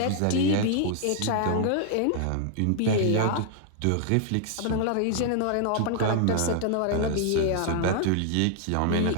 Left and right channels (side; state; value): both; different; correlation 0.00